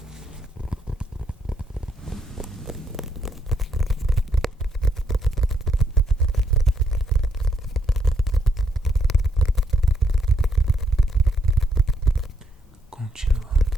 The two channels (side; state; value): both; normal; correlation 0.74